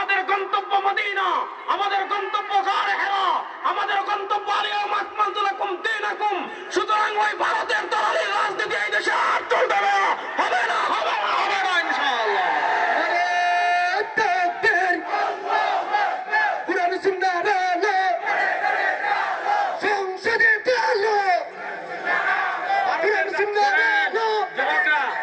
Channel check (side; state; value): both; identical; correlation 1.00